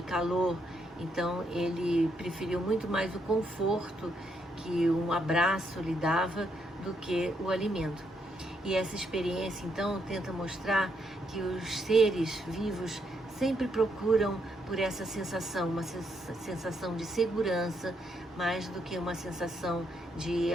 calor. Então ele preferiu muito mais o conforto que um abraço lhe dava do que o alimento. E essa experiência então tenta mostrar que os seres vivos sempre procuram por essa sensação, uma sensação de segurança, mais do que uma sensação de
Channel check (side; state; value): both; normal; correlation 0.76